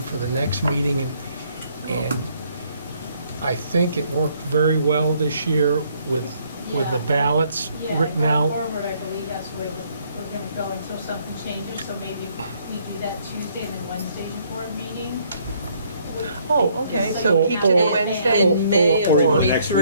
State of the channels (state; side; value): inverted; both; correlation -0.66